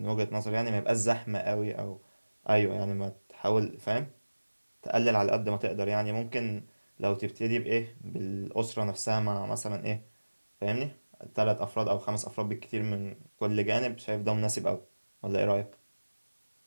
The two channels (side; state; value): both; inverted; correlation -1.00